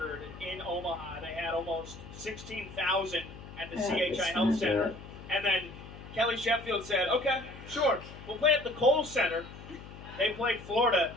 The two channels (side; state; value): left; noise; hum, 15 dB below the sound